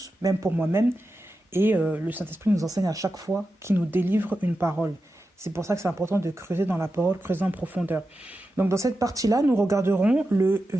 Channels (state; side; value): normal; both; correlation 0.91